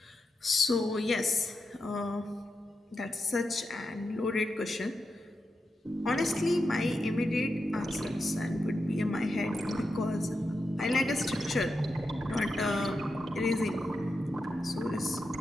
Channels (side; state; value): both; normal; correlation 0.87